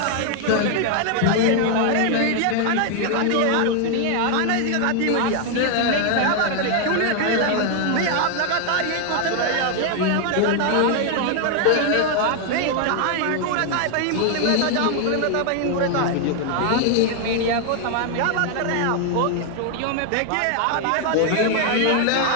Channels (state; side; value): different; both; correlation 0.00